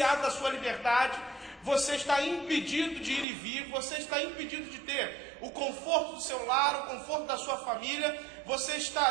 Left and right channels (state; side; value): drops out; left; at 3.2 s